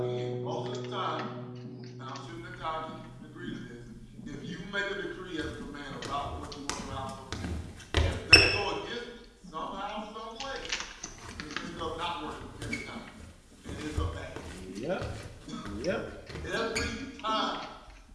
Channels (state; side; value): identical; both; correlation 1.00